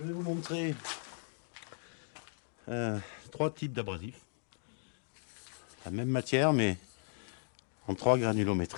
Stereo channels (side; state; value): right; silent; digital silence